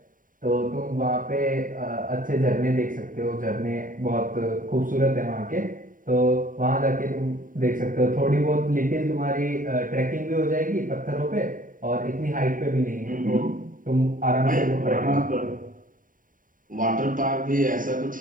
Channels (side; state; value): left; late; 0.39 ms